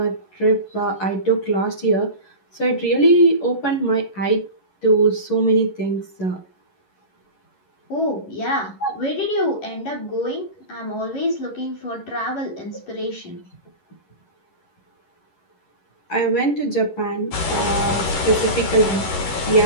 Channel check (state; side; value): late; right; 11 ms